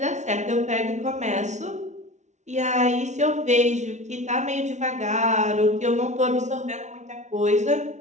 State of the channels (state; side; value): late; left; 0.33 ms